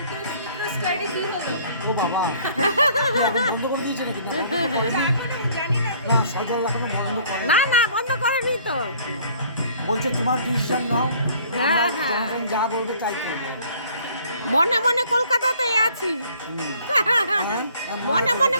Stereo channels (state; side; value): inverted; both; correlation -0.57